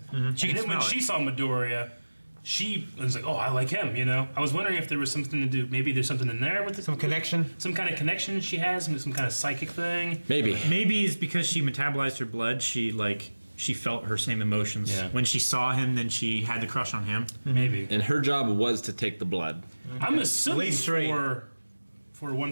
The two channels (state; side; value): inverted; both; correlation -1.00